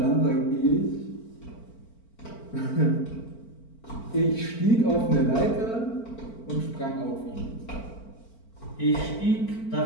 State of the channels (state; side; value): late; right; 4.4 ms